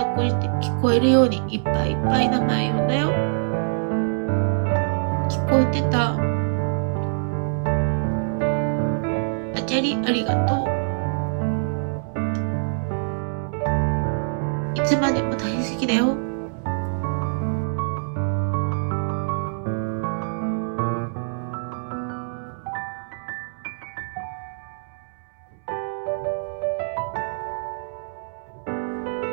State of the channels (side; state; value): left; silent; 62 dB below the other